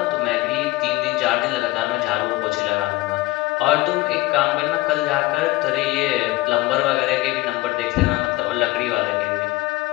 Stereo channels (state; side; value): quieter; right; 19.2 dB